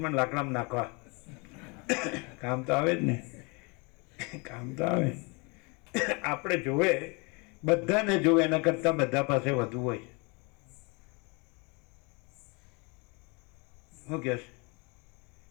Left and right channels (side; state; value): right; quieter; 30.2 dB